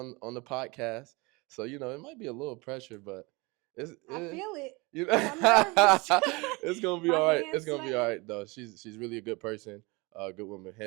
on the podcast. So it might be a little pressure, but I feel it. you I'm nervous. it's gonna be My all right. It's hands gonna be all sweating. right though. She's really a good person, good woman,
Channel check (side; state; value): left; quieter; 25.9 dB